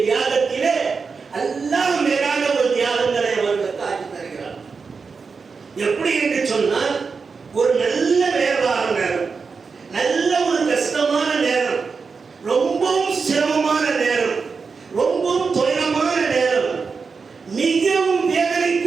தியாகத்திலே அல்லாஹ் மேலான ஒரு தியாகங்களை அவர்களுக்கு ஆக்கி தருகிறார். எப்படி என்று சொன்னால், ஒரு நல்ல வியாபார நேரம், நல்ல ஒரு கஷ்டமான நேரம், ரொம்பவும் சிரமமான நேரம், ரொம்பவும் துயரமான நேரம், மிகவும்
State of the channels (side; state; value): left; quieter; 5.0 dB